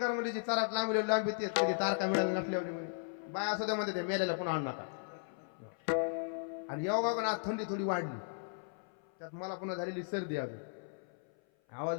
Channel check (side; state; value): right; silent; 54 dB below the other